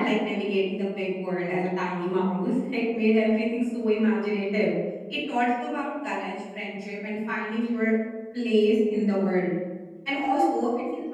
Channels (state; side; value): identical; both; correlation 1.00